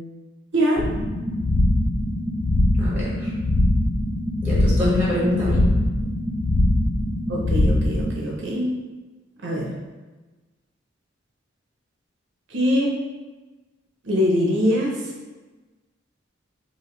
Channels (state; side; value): normal; both; correlation 0.82